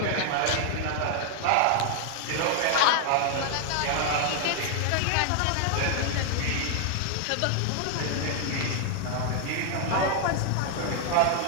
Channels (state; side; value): different; both; correlation 0.00